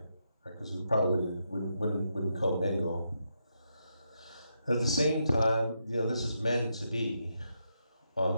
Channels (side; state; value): both; inverted; correlation -0.82